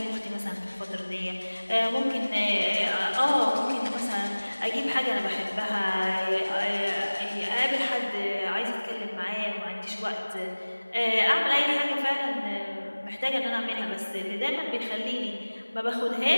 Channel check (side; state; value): both; inverted; correlation -1.00